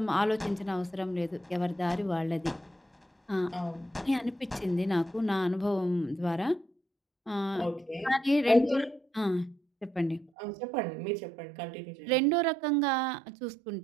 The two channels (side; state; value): left; drops out; at 10.3 s